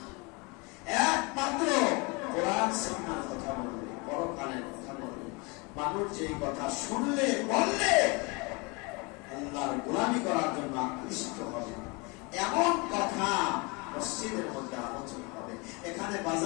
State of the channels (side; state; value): right; quieter; 28.7 dB